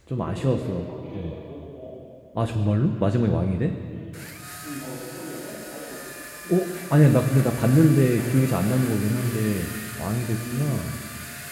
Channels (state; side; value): identical; both; correlation 1.00